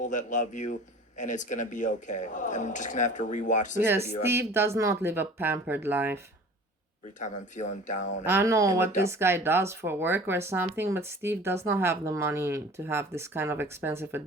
that love you, and it's going to be okay. I'm just going to have to rewatch this video. Steve does not live a pampered life. Every time I'm feeling down. I don't know what this guy does for work or something, but Steve does not have the money to have this kind of expensive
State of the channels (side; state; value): both; normal; correlation 0.44